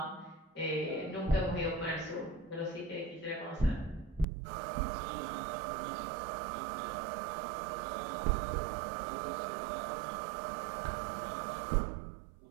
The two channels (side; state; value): left; drops out; at 4.2 s